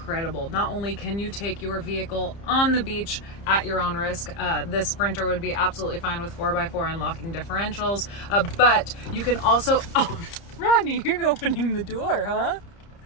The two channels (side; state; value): right; late; 30 ms